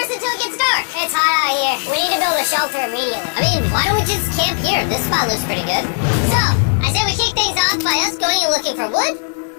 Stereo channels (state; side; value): silent; right; digital silence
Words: until it gets dark. It's hot out here. We need to build a shelter immediately. I mean, why don't we just camp here? This spot looks pretty good. So, I say we kick things off by us going and looking for wood.